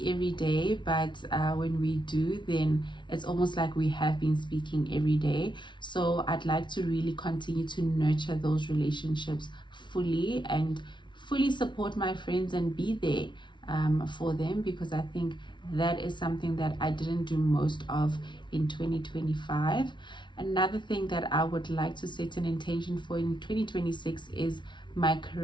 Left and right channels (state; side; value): late; right; 0.23 ms